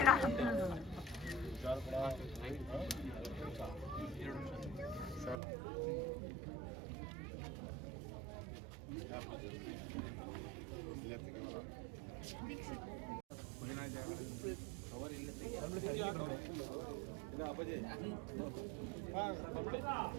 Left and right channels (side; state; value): left; drops out; at 5.4 s